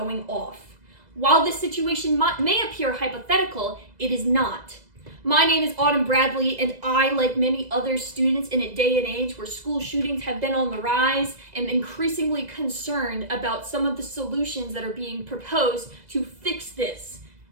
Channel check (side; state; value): left; late; 2.0 ms